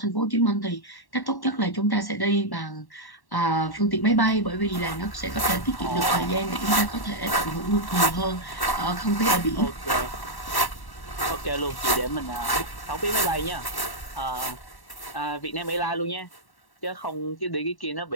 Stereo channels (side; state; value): right; late; 1.1 ms